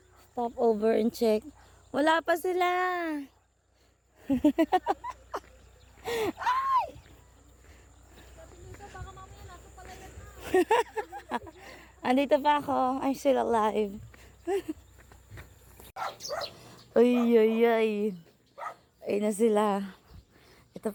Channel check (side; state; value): both; identical; correlation 1.00